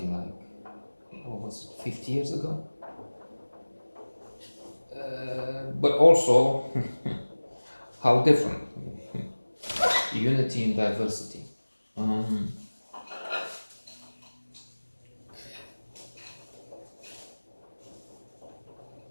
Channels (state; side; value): inverted; both; correlation -1.00